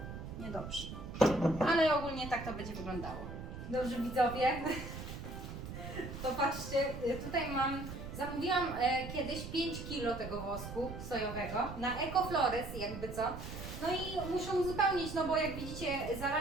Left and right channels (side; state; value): right; noise; rumble, 9 dB below the sound